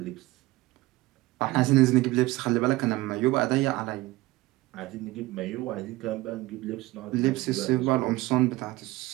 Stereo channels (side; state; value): left; quieter; 19.4 dB